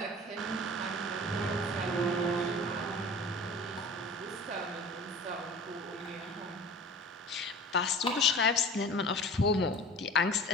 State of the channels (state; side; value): normal; both; correlation 0.40